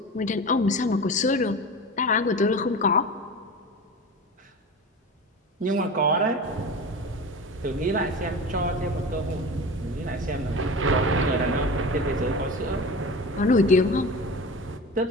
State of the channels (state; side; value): normal; both; correlation 0.31